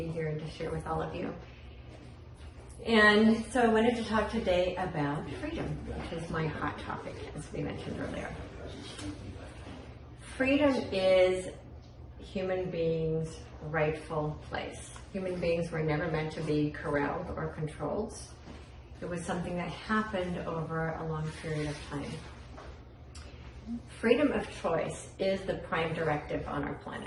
here and to share with all of you. And so I wanted to talk today about freedom, which is my hot topic, as we mentioned earlier. Freedom is human beings' rightful place. Human beings were never meant to be corralled or controlled. It was something that happened over a long period of time. Freedom of choice is the prime directive on our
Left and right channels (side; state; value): both; identical; correlation 1.00